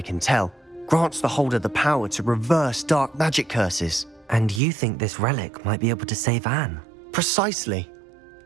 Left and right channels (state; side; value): drops out; left; at 4.6 s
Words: can tell, grants the holder the power to reverse dark magic curses. And you think this relic might be able to save Anne? Precisely.